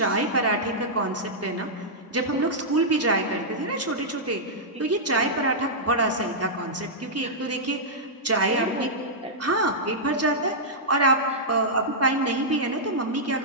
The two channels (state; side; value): normal; both; correlation -0.10